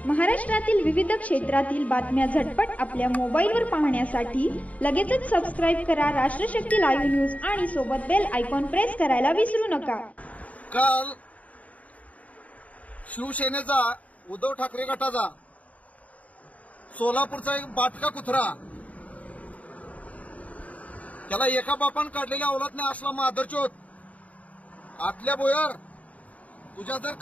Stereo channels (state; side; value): late; right; 0.069 ms